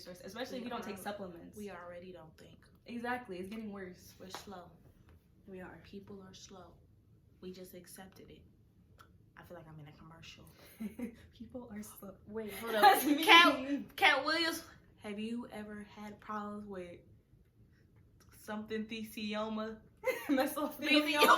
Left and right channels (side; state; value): both; identical; correlation 1.00